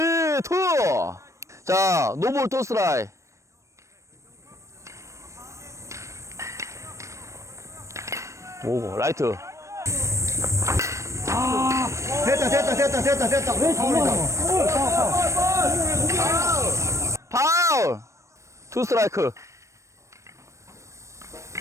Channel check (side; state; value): left; late; 0.15 ms